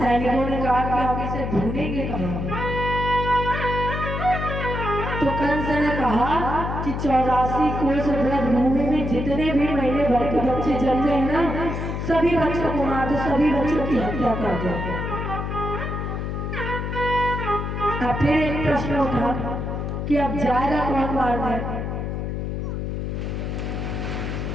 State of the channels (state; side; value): noise; left; hum, 3 dB below the sound